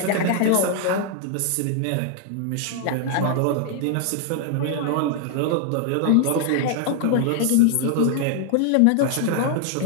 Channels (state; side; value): different; both; correlation 0.00